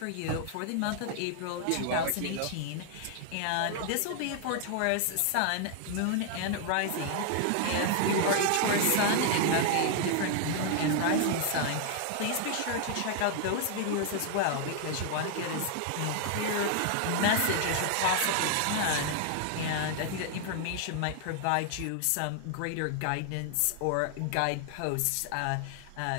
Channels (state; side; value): different; both; correlation 0.00